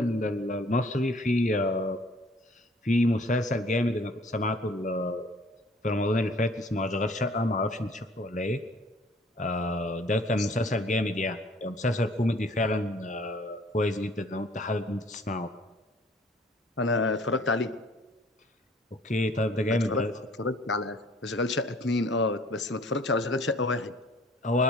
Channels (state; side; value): normal; both; correlation 0.54